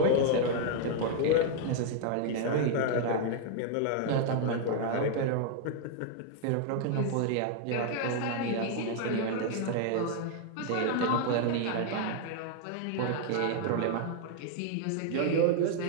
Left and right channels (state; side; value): different; both; correlation 0.00